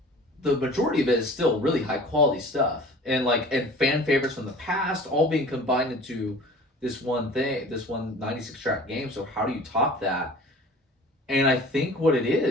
the majority of it is still really high quality stuff. And fan favorites from the past all being combined into this one 96 track game. So how do you top that? And I think what it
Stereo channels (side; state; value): both; normal; correlation 0.44